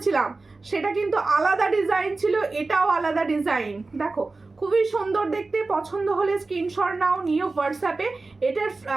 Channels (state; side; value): quieter; left; 3.6 dB